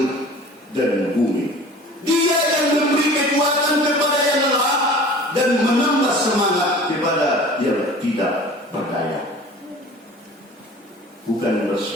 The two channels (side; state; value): both; normal; correlation 0.43